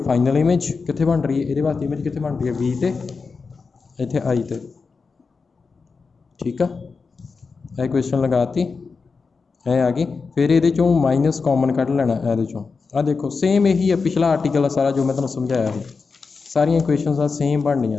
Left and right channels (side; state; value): right; quieter; 4.7 dB